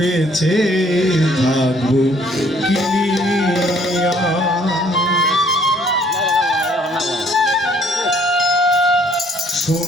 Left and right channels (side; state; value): both; normal; correlation 0.62